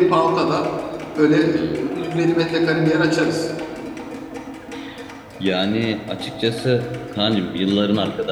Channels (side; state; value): both; identical; correlation 1.00